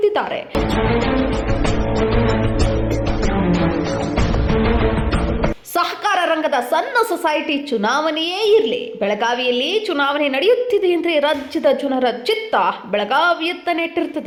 ಸಹಕಾರ ರಂಗದ ಸಣ್ಣ ಸೊಸೈಟಿ ಚುನಾವಣೆಯೇ ಇರಲಿ, ಬೆಳಗಾವಿಯಲ್ಲಿ ಚುನಾವಣೆ ನಡೆಯುತ್ತಿದೆ ಎಂದರೆ ರಾಜ್ಯದ ಜನರ ಚಿತ್ತ ಬೆಳಗಾವಿಯತ್ತ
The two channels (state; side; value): identical; both; correlation 1.00